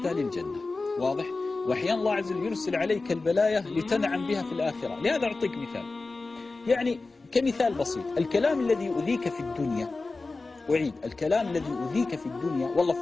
للجنة، واضح؟ وأحيانا الله عز وجل يرسل عليك البلايا لتنعم بها في الآخرة. لهذا أعطيك مثال، يعني كمثال بسيط، الكلام الذي يؤذيك في الدنيا، أعيد، الكلام الذي يؤذيك في الدنيا، والله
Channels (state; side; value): quieter; right; 3.6 dB